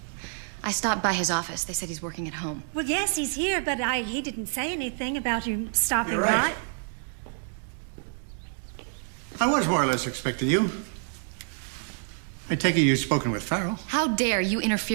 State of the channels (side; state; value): left; silent; digital silence